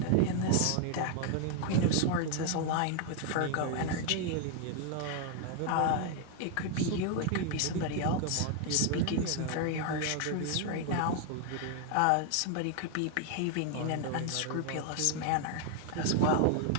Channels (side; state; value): both; different; correlation 0.00